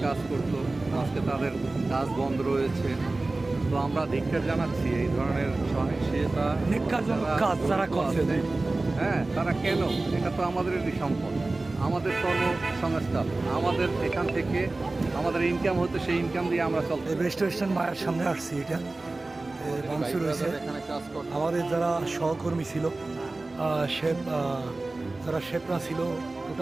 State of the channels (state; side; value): quieter; left; 3.1 dB